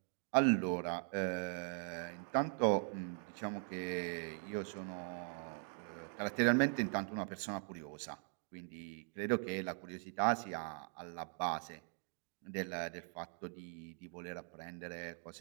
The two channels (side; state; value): left; silent; 50 dB below the other